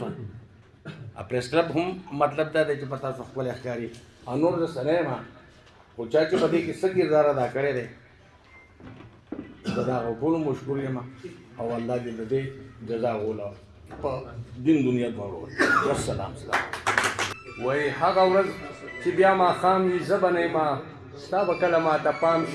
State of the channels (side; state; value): both; identical; correlation 1.00